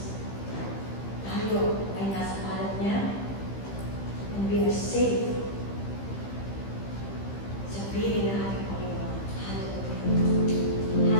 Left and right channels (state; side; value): late; right; 15 ms